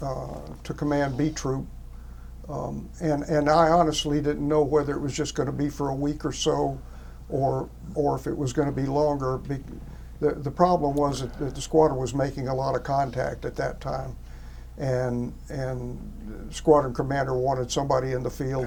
command B Troop. And I honestly didn't know whether it was just going to be for a week or so, or if it was going to be longer. The problem was that the squadron was making a lot of contact at that time. And the squadron commander wanted somebody in the field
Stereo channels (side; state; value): both; identical; correlation 1.00